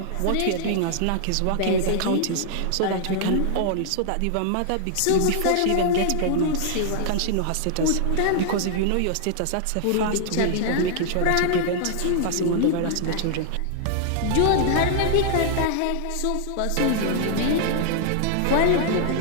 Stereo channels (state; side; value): different; both; correlation -0.01